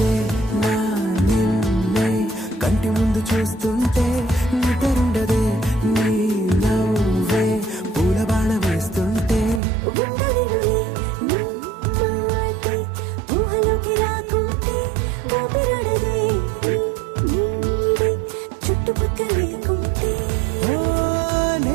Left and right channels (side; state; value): left; drops out; at 9.6 s